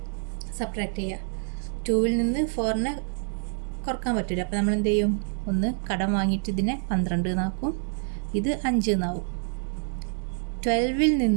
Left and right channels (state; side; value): silent; left; digital silence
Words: സബ്ട്രാക്ട് ചെയ്യുക. 2ൽ നിന്ന് 4നെ കുറക്കാൻ പറ്റില്ല, അപ്പോൾ നമ്മൾ എന്ത് ചെയ്യും? ഒന്ന് കടം വാങ്ങിയിട്ട് ഇതിനെ 12 എന്നാക്കും, ഇത് 5 എന്നാവും. 12ൽ